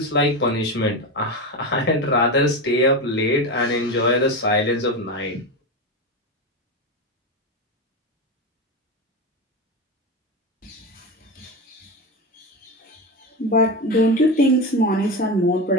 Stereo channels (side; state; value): both; normal; correlation 0.19